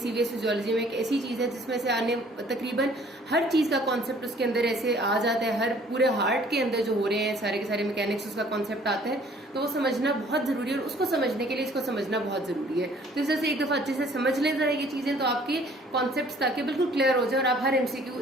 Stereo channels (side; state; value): both; normal; correlation 0.56